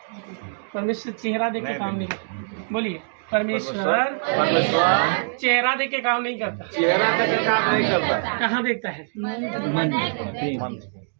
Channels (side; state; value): left; silent; digital silence